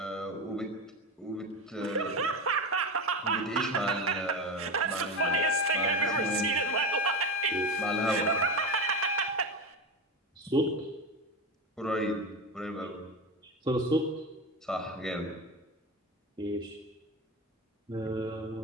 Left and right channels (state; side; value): normal; both; correlation 0.20